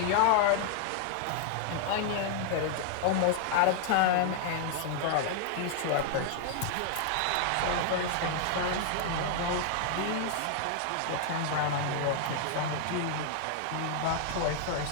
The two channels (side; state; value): both; different; correlation 0.00